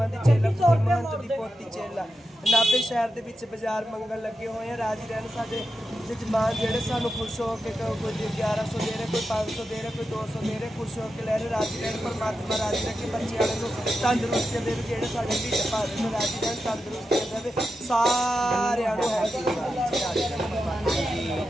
दी चेला महंत दी पोती चेला। नाभे शहर के विच बाजार मंगल लगे हुए हैं। राजी रहन साडे जजमान जेडे सानू खुश हो के कोई 1100 दे रहे, कोई 500 दे रहे, कोई 200 दे रहे, खुश हो के ले रहे। राजी रहन, परमात्मा राजी रखे, बच्चे वाले को तंदुरुस्ती देवे, जेडे साडे ढिड भर रहे राजी रहन, तंदुरुस्ती देवे सारे।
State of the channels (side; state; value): both; normal; correlation 0.89